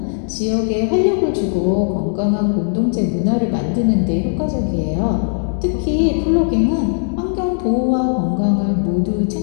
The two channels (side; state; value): right; silent; digital silence